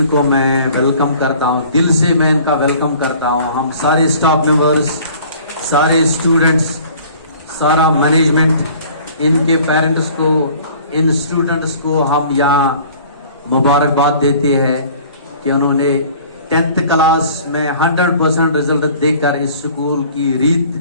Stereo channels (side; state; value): both; inverted; correlation -0.50